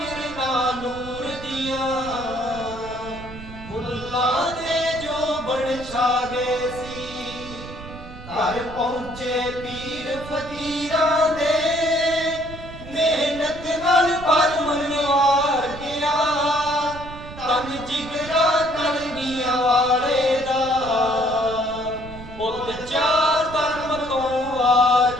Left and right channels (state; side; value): noise; right; rumble, 14 dB below the sound